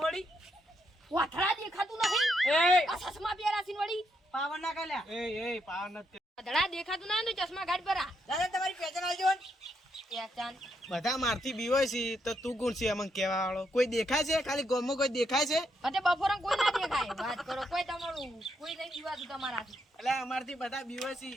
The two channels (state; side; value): normal; both; correlation 0.78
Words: વળી વાથડા દેખાતું નહીં એ આ ચશ્મા પહેરાસીન વળી પાવર ના કાલ્યા એ પાવર નથી. વાથડા દેખાતું ના તો ચશ્મા ગાઢ પરા દાદા તમારી પહેચાન આવજો ને પહેચાન બધા મારથી બીવાય છે તો તું કોણ છે અમને કહેવા વાળો? કોઈ દેખાય છે? ખાલી ગામમાં કોઈ દેખાય છે? અતે બપોરે કોઈ ના દેખાય વાત કરો કોઈ તમારું કોઈ નહીં જીવાતું તમારાથી એટલે અમારથી બધા બીવાય છે.